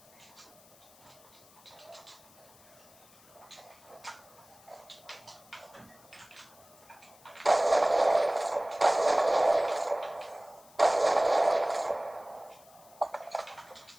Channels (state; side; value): noise; left; hiss, 26 dB below the sound